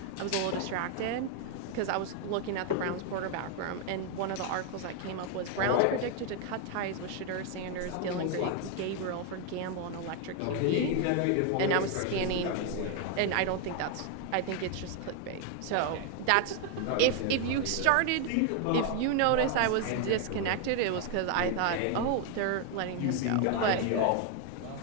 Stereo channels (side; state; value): both; different; correlation 0.01